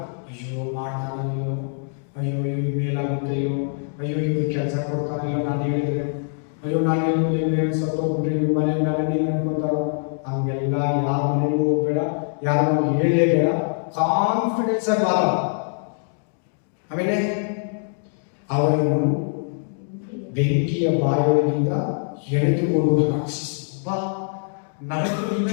ಅಯ್ಯೋ ಮಾಡ್ತಾನೋ, ಅಯ್ಯೋ ಇವ್ರು ಮೇಲಾಗುತ್ತೆಯೋ, ಅಯ್ಯೋ ಇವ್ರು ಕೆಲಸ ಕೊಡ್ತಾನೋ, ನಾನು ಹೇಳಿದ್ರೆ, ಅಯ್ಯೋ ನಾನು ಹೇಳಿದ್ರೆ ಸತ್ತೋಗ್ಬಿಟ್ರೆ ಇವ್ರ ಮನೆ ಮೇಲೆ ನೀನು ಅನ್ಕೊಂತಾರೋ. ಹಂಗೆಲ್ಲ ಯಾರ ಮನೆಗೂ ಹೋಗ್ಬೇಡ, ಯಾರು ಹೇಳಲೇಬೇಡ. ಕಾನ್ಫಿಡೆನ್ಸ್ ಆಗಿ ಮಾತಾಡ. ಆಮೇಲೆ ಅವರನ್ನು ಬೆಂಕಿಯ ಬಾಯೊಳಗಿಂದ ಎಳೆದುಕೊಂಡು ರಕ್ಷಿಸಿ. ನರಕದಿಂದ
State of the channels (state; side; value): silent; right; 58 dB below the other